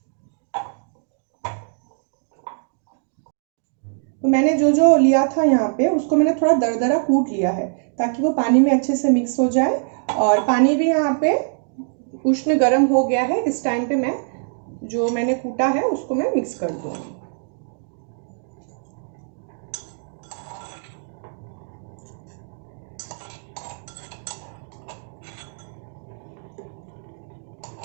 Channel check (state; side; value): silent; left; digital silence